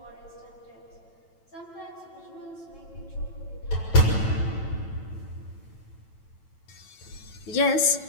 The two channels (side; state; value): right; late; 9.0 ms